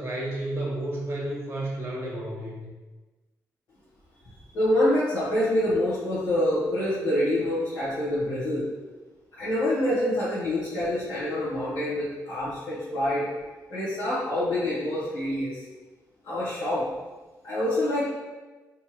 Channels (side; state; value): both; normal; correlation 0.73